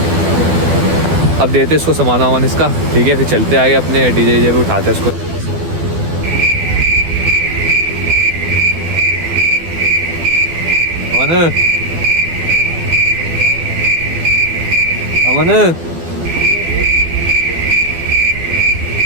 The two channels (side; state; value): left; late; 12 ms